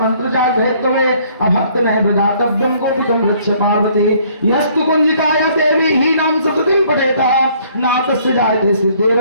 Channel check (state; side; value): inverted; both; correlation -0.61